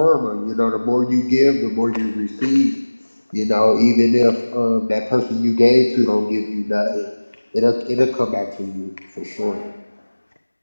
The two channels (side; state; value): both; inverted; correlation -1.00